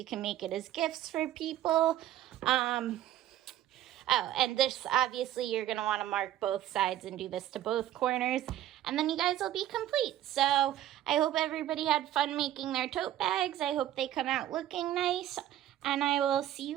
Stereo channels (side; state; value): left; quieter; 12.7 dB